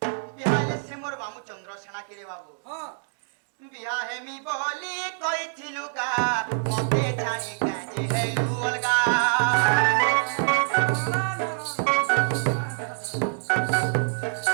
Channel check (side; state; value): left; silent; digital silence